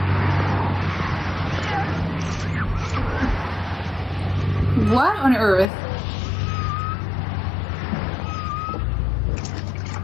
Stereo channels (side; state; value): right; drops out; at 5.7 s